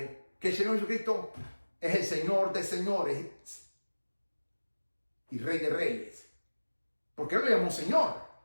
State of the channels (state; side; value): inverted; both; correlation -1.00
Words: que el Señor Jesucristo es el Señor de señores y Rey de reyes? Porque él lo llamó Señor.